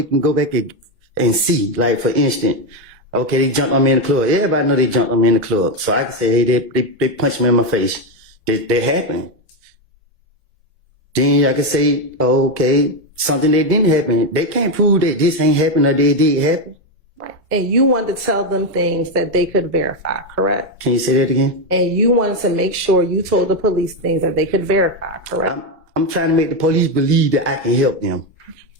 can go back and see. Like, for instance, okay, they jumped on me in the club. Everybody know they jumped on me in the club. So I can say, hey, they punched me in my face. That happened. Then I can say, oh, okay, something that didn't happen. They can't prove that this ain't happened or they did happen. Right. And you wanted to tell them things that they could verify, correct? Can you say that again? And you wanted to make sure you told the police things that they could verify, correct? I'm trying to make the police believe that I can help them.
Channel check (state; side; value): normal; both; correlation 0.08